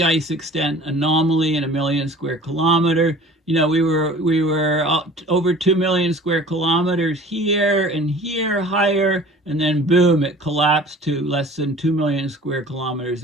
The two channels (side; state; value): both; normal; correlation 0.45